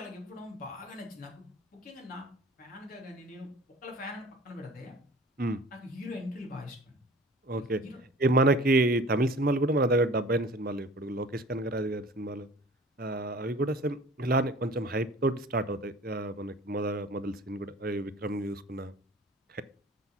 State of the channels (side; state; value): both; normal; correlation 0.45